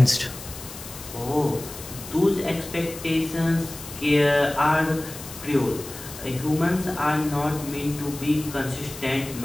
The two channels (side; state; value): left; noise; hiss, 14 dB below the sound